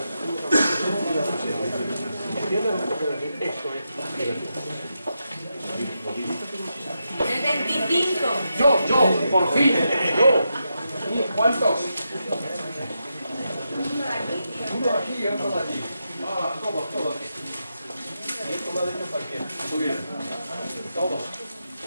esto es El 25. yo, por fin, yo. ¿Cuántos? Uno aquí y otro de aquí. Todos aquí. Y esto lo ha dicho cualquiera. Muy bien. Todos.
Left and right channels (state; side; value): inverted; both; correlation -0.86